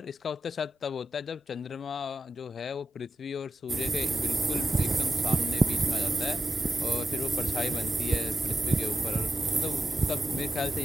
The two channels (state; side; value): normal; both; correlation 0.92